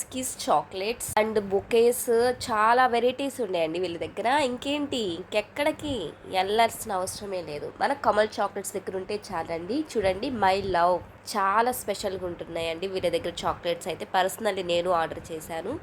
kiss chocolates and bouquets, చాలా వెరైటీస్ ఉన్నాయండి వీళ్ళ దగ్గర. ఇంకేంటి, ఇంకెక్కడికి వెళ్ళాల్సిన అవసరమే లేదు. మన కమల్ చాక్లెట్స్ దగ్గర ఉంటే చాలండి. చూడండి, మై లవ్ చాలా స్పెషల్గా ఉంటున్నాయండి వీళ్ళ దగ్గర చాక్లెట్స్ అయితే. పర్సనల్లీ నేను ఆర్డర్ చేశాను.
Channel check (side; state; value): both; identical; correlation 1.00